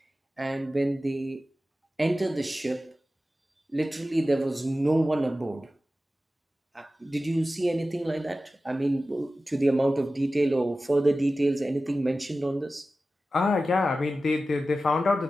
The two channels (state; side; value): normal; both; correlation 0.94